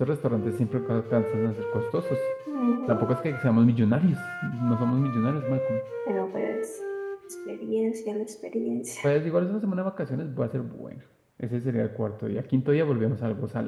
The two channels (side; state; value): both; identical; correlation 1.00